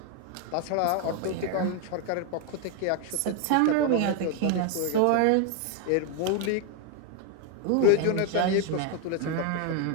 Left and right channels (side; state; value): both; different; correlation 0.01